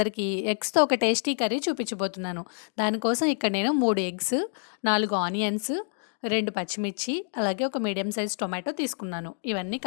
ఎగ్స్తో ఒక టేస్టీ కర్రీ చూపించబోతున్నాను. దానికోసం ఇక్కడ నేను 3 ఎగ్స్, 4 ఆనియన్స్, 2 పచ్చిమిర్చి, అలాగే ఒక మీడియం సైజ్ టొమాటో తీసుకున్నాను. ఇవన్నీ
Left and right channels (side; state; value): right; silent; digital silence